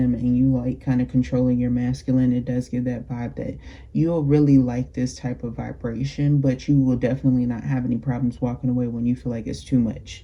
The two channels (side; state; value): both; identical; correlation 1.00